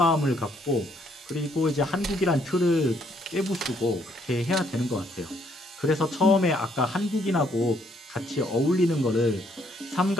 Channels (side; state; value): both; normal; correlation 0.69